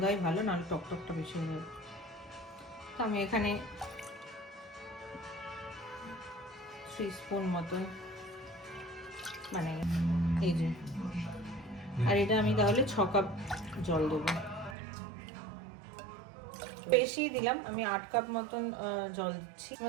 ভালো, নাহলে টকটকটা বেশি হয়ে যাবে। তো আমি এখানে 3 স্পুন মতন, মানে এই যে, আর এটা আমি তাহলে 6 কাপ জল দেবো। বেশি দিলাম, আমি 8 কাপ মতন জল দিচ্ছি। এর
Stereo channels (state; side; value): drops out; left; at 14.8 s